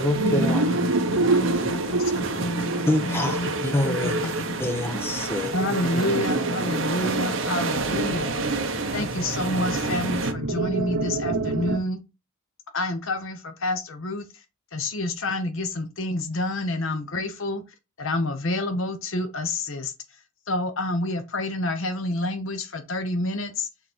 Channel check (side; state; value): both; normal; correlation 0.28